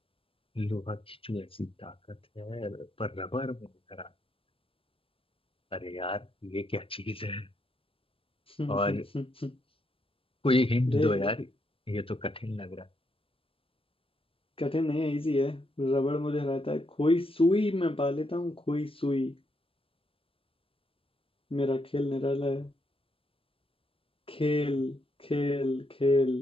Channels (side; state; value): right; late; 0.26 ms